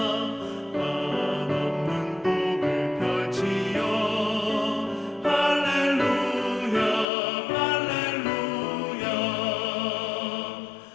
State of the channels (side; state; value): right; drops out; at 7.1 s